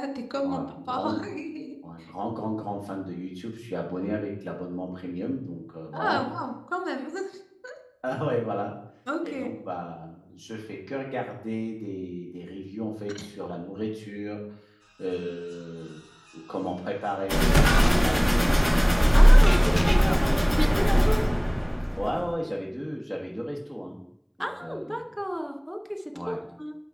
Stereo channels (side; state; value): both; identical; correlation 1.00